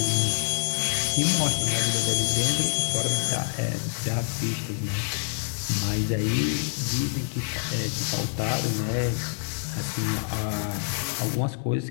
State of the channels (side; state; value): right; silent; 61 dB below the other